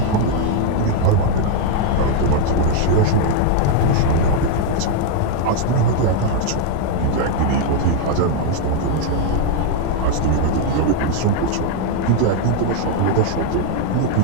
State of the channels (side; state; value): both; different; correlation 0.00